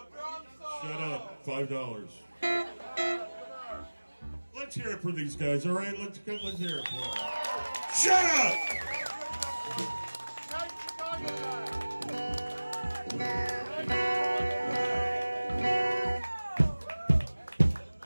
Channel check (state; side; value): inverted; both; correlation -1.00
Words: drum solo. Shut up. $5. Let's hear it for these guys, all right? Let's hear it for them. Shut up! Night Chicago